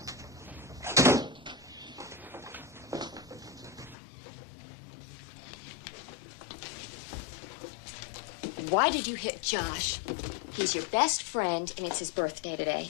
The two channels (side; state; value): right; drops out; at 4.0 s